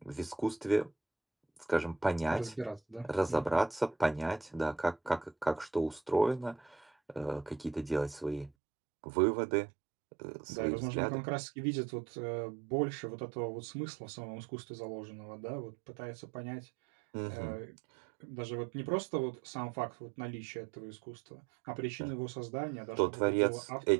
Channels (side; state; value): left; drops out; at 8.5 s